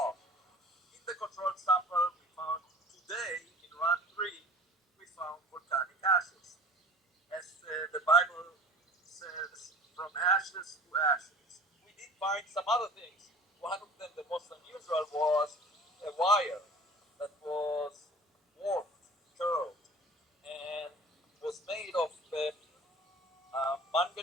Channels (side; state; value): both; normal; correlation 0.43